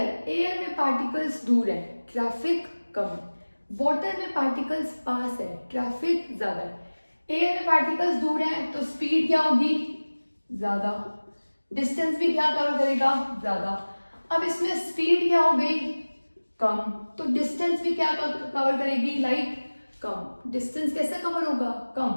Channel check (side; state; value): both; inverted; correlation -1.00